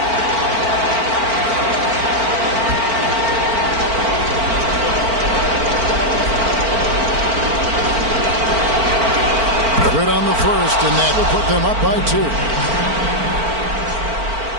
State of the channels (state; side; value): late; left; 4.4 ms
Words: Good on the first, and that will put them up by 2.